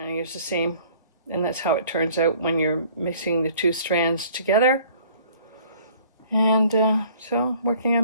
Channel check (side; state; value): both; inverted; correlation -0.54